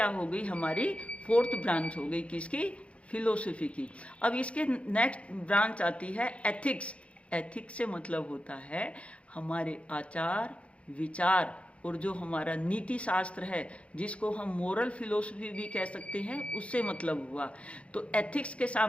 हो गई? हमारी फोर्थ ब्रांच हो गई, किसकी? फिलोसफी की। अब इसके नेक्स्ट ब्रांच आती है एथिक्स। एथिक्स से मतलब होता है हमारे आचार विचार और जो हमारा नीति शास्त्र है, जिसको हम मोरल फिलोसफी भी कह सकते हैं, उससे मतलब हुआ। तो एथिक्स के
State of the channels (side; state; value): right; late; 0.062 ms